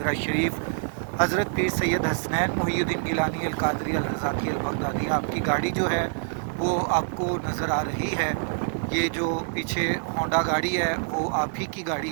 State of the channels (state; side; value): silent; left; 61 dB below the other